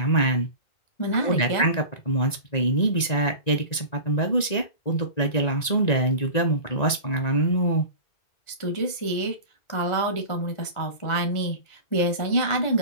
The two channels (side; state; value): right; late; 1.9 ms